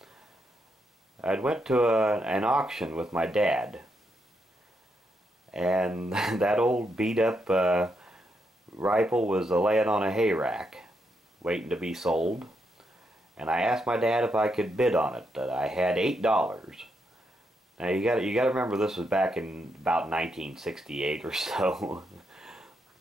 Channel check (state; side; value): normal; both; correlation 0.80